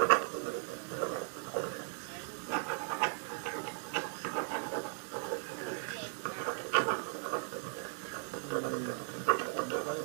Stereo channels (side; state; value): left; silent; 53 dB below the other